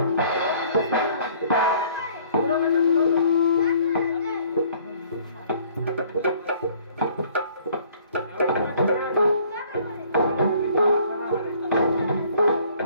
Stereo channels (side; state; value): both; inverted; correlation -0.57